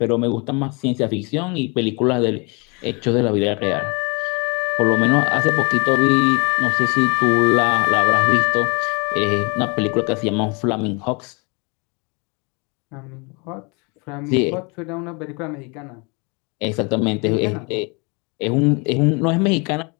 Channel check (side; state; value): right; quieter; 30.9 dB